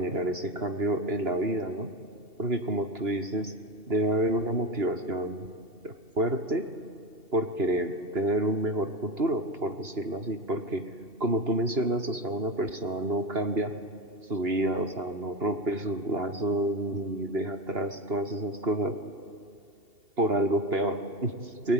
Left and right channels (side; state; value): left; late; 2.8 ms